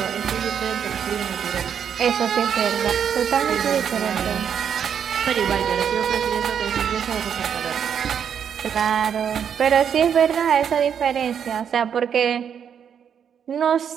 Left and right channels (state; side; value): quieter; left; 8.0 dB